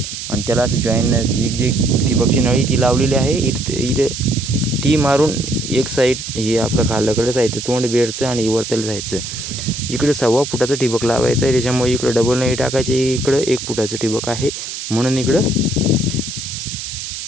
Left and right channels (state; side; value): noise; right; hiss, 7 dB below the sound